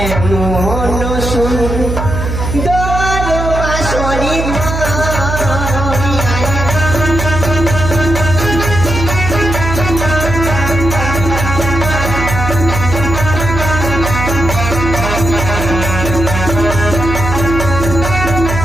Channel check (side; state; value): right; noise; hum, 3 dB below the sound